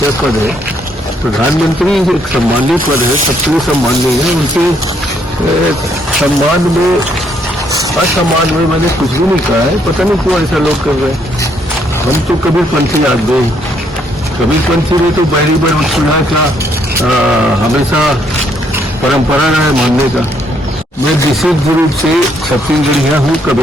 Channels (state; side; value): normal; both; correlation 0.70